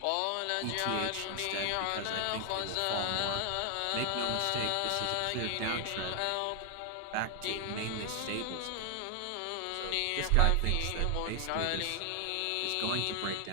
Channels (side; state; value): both; different; correlation 0.00